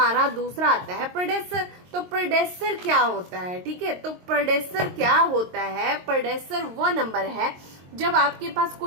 दूसरा आता है प्रेडेसर। तो प्रेडेसर क्या होता है, ठीक है। तो प्रेडेसर क्या होता है, प्रेडेसर वो नंबर है जब आपके पास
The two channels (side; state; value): left; late; 22 ms